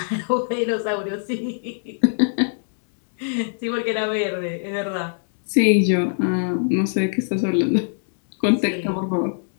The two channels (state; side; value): silent; right; digital silence